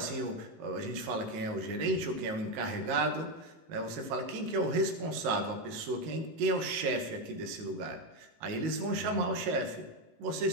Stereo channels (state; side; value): late; left; 19 ms